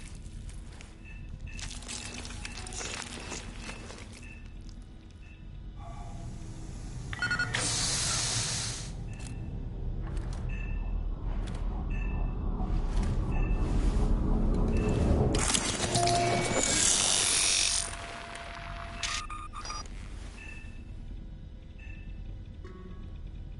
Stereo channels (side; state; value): both; identical; correlation 1.00